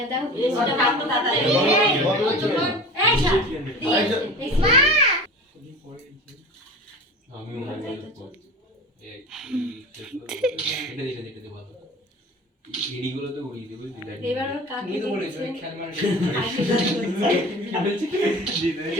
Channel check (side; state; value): both; normal; correlation 0.37